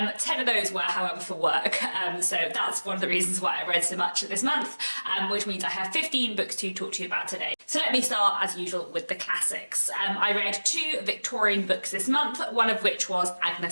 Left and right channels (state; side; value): inverted; both; correlation -1.00